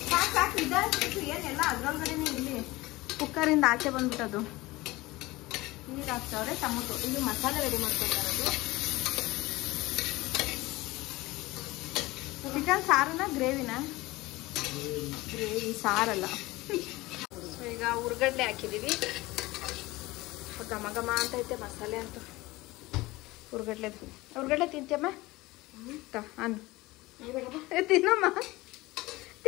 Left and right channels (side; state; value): right; quieter; 20.3 dB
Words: ಸಾಕು ಇದಾಗ್ಬಿಟ್ಟು ಏನೆಲ್ಲ ಅದ್ರೊಳಗಡೆನೆ ಇಲ್ಲಿ ಕುಕ್ಕರಿಂದ ಆಚೆ ಬಂದ್ಬಿಟ್ಟದು. ಈಗ ಹಾಕ್ತಾವ್ರೆ ಟೊಮೊಟೊ. ಇಲ್ಲಿ ಮಸಾಲೆ ರೆಡಿ ಮಾಡ್ಕೊತಾರದು. ಚಿಕನ್ ಸಾರನ ಗ್ರೇವಿನ? ಗ್ರೇವಿ, ಸಾರಲ್ಲ. ಈಗ ಉರ್ಗಡ್ಲೆ ಹಾಕಿದೀವಿ. ಘಮ ಘಮ ಅಂತ ಐತೆ ಮಸಾಲೆ ಅಂತ. ಉರ್ಗಡ್ಲೆ ತಿಂತೀಯಮ್ಮ? ಅನ್ನ ತಿನ್ನಮ್ಮ.